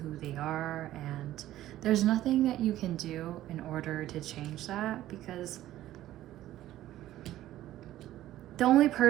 who they are, and there's nothing that you can do in order to change that, because the only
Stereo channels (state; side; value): quieter; left; 14.0 dB